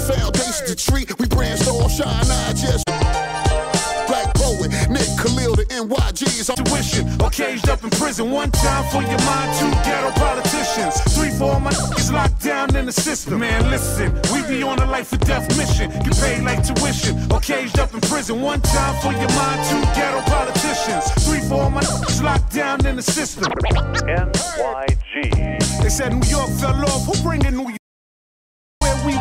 foundation to treat, we brainstorm, shine, I just. Black poet, Nick Khalil, the NYG's. I'm tuition, caged up in prison. One time for your mind, 2 ghetto politicians. 3 for all my niggas locked down in the system. Man, listen, we be on a life or death mission. Get paid like tuition or caged up in prison. One time for your mind, 2 ghetto politicians. 3 for all my niggas locked down in the system. NYG. They said New York fell off. Who bring in New York? Where we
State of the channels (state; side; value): identical; both; correlation 1.00